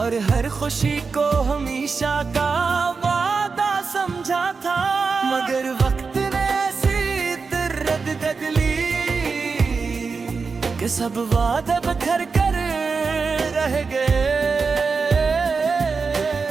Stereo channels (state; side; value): quieter; left; 4.8 dB